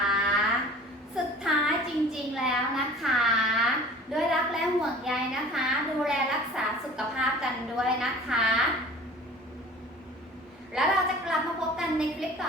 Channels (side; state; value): both; normal; correlation 0.44